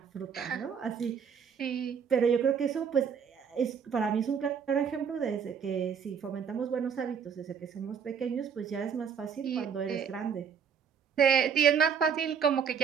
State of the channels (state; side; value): quieter; left; 7.0 dB